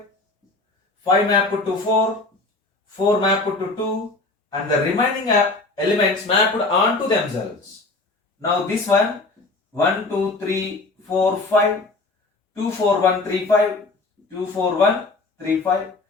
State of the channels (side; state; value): right; quieter; 3.3 dB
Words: 5 mapped to 4. 4 mapped to 2. And the remaining elements mapped onto themselves. Now, this one 1, 2, 3, 4, 5. 2, 4, 1, 3, 5. 2, 4, 1, 3, 5.